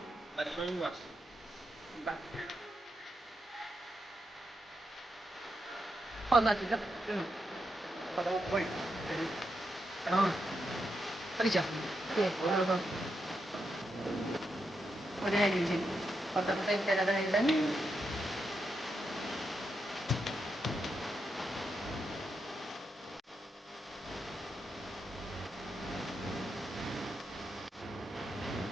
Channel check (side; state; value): both; normal; correlation 0.84